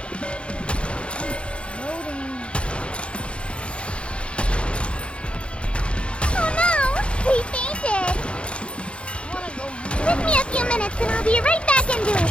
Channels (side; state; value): right; late; 0.058 ms